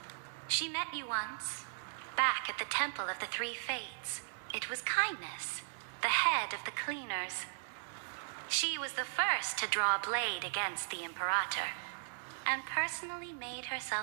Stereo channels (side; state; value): left; silent; digital silence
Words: She met you once, back at the Temple of the Three Fates. It was Kindness, the head of the cleaners. She was the first to draw a blade against the Imperator, and personally made